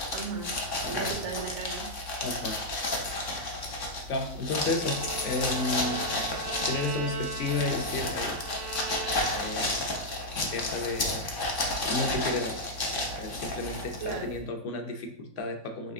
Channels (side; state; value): left; late; 3.5 ms